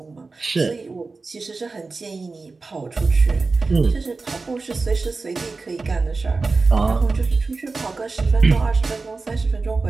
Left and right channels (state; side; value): quieter; left; 3.9 dB